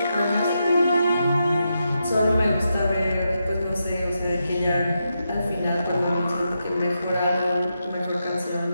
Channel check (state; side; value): inverted; both; correlation -0.85